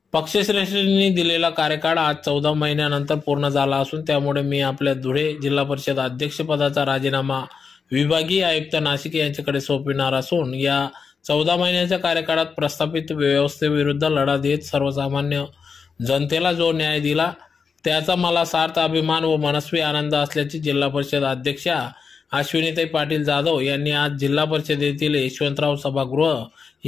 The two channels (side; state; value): right; quieter; 5.6 dB